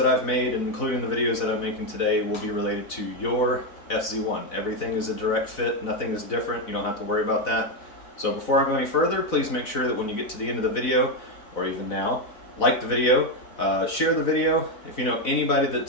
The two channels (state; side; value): late; right; 4.0 ms